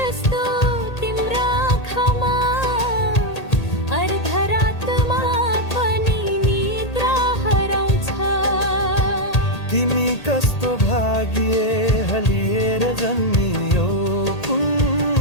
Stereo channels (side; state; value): right; late; 1.8 ms